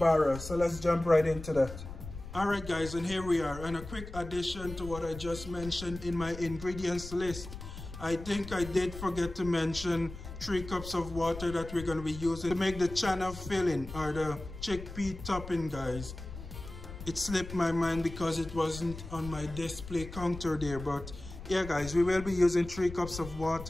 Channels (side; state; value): left; noise; rumble, 12 dB below the sound